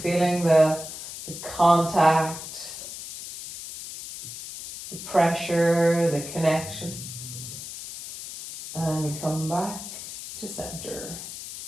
feeling the contact, the pressure, the connection? And we come back to center.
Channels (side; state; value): left; noise; hiss, 10 dB below the sound